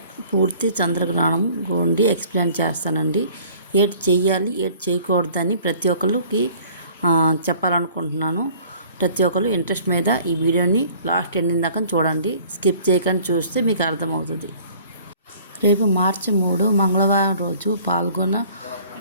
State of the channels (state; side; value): inverted; both; correlation -0.52